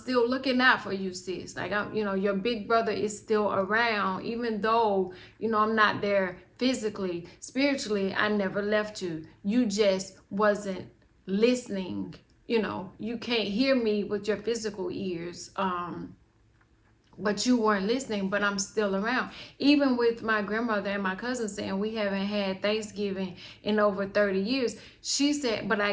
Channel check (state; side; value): identical; both; correlation 1.00